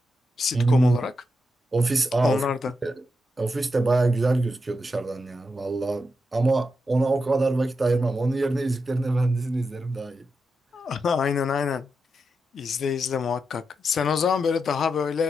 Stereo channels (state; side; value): normal; both; correlation 0.86